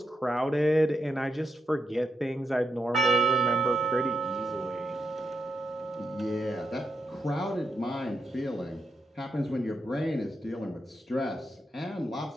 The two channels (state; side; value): normal; both; correlation 0.83